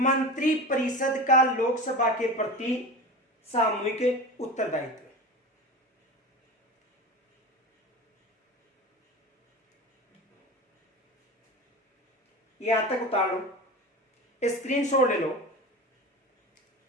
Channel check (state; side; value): normal; both; correlation 0.30